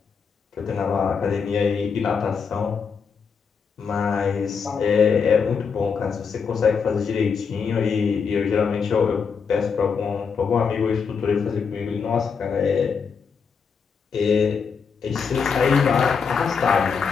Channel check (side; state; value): right; quieter; 5.9 dB